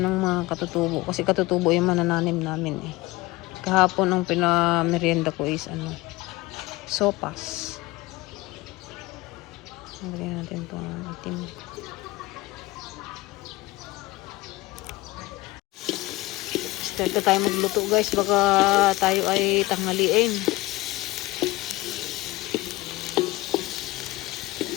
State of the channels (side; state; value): right; quieter; 20.2 dB